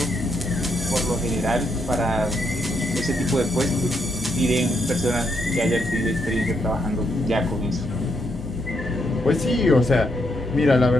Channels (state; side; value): normal; both; correlation 0.77